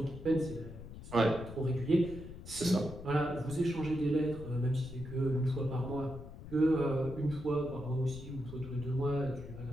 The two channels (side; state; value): left; noise; rumble, 13 dB below the sound